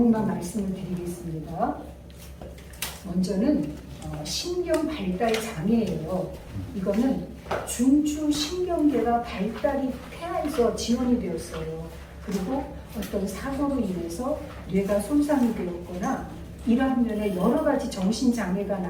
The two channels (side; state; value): both; identical; correlation 1.00